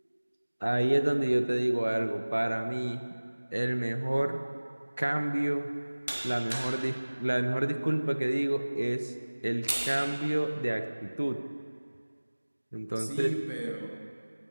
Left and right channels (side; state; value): both; inverted; correlation -1.00